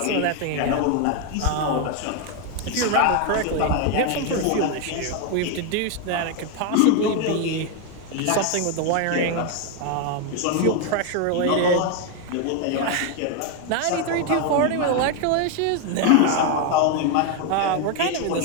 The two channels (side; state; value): both; different; correlation 0.01